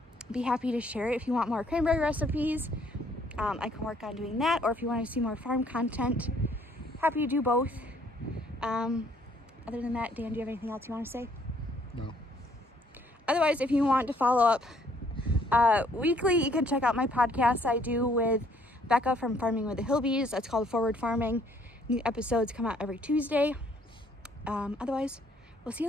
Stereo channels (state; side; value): normal; both; correlation 0.64